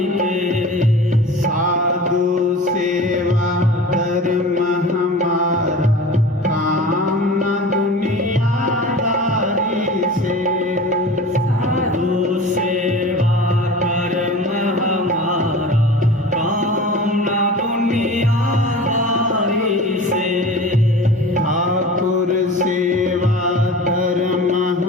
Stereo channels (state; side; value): normal; both; correlation 0.37